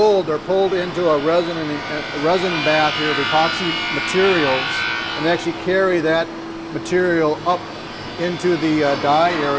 they're pulled into a resin bath here of epoxy materials, and they actually carry that material up into the dye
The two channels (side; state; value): both; identical; correlation 1.00